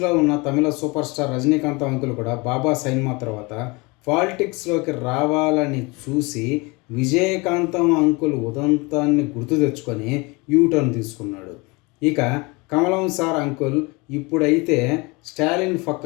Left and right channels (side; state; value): right; quieter; 26.5 dB